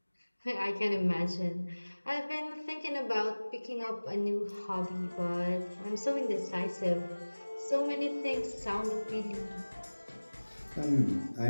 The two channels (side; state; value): both; inverted; correlation -1.00